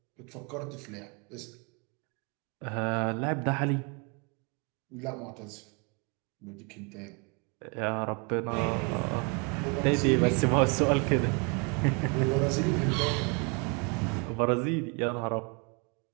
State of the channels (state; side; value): quieter; left; 32.6 dB